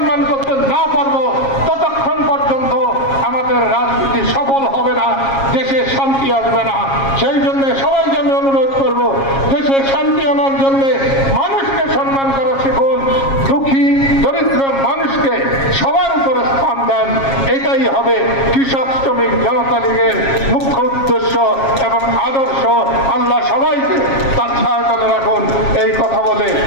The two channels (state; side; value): late; right; 7.3 ms